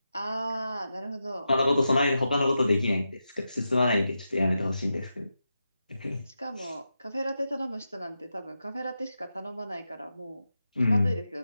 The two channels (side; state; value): both; inverted; correlation -0.89